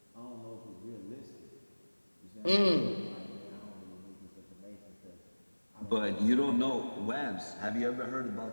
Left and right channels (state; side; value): inverted; both; correlation -1.00